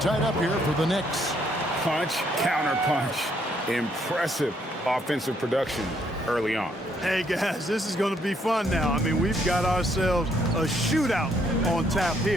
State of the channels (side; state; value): both; normal; correlation 0.70